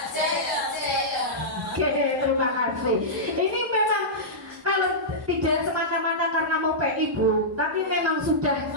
Oke, terima kasih. Ini memang kalau tidak semata-mata karena mau PI Bu, tapi memang sudah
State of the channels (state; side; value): normal; both; correlation -0.13